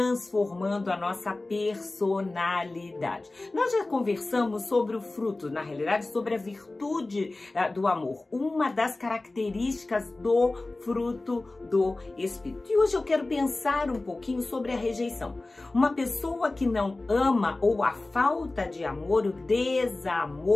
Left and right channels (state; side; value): quieter; right; 3.0 dB